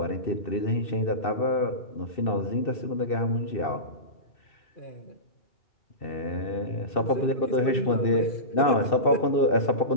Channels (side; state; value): right; late; 2.7 ms